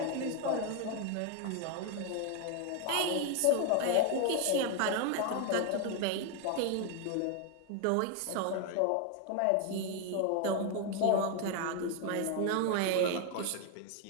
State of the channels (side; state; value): both; different; correlation 0.01